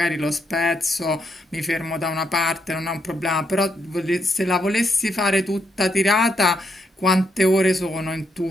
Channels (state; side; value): normal; both; correlation 0.78